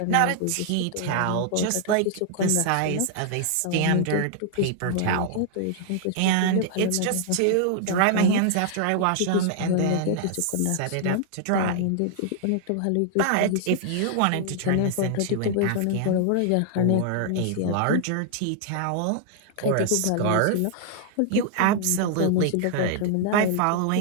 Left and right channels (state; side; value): different; both; correlation -0.01